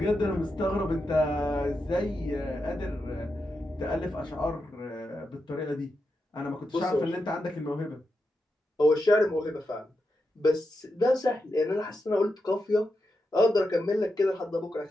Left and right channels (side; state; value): both; normal; correlation 0.87